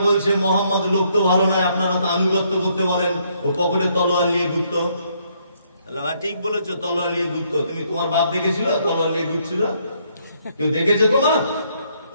বলছে, মোহাম্মদ লোক তো ভালো নয়, আপনারা তো আনুগত্য করতে বলেন, ও পকেটে তলোয়ার নিয়ে ঘুরত। ঠিক বলেছো, তলোয়ার নিয়ে ঘুরত। তুমি তোমার বাপ দেখেছিল তলোয়ার নিয়ে ঘুরছিল? কেউ দেখেছে তোমার?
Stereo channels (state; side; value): inverted; both; correlation -0.71